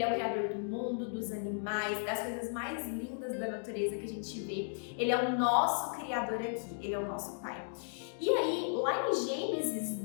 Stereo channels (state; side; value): silent; right; digital silence